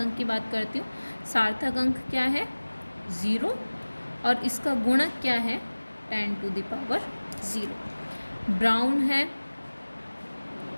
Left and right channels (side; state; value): both; inverted; correlation -1.00